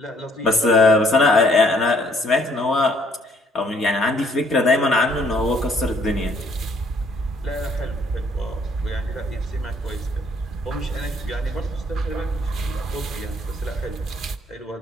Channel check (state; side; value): normal; both; correlation 0.64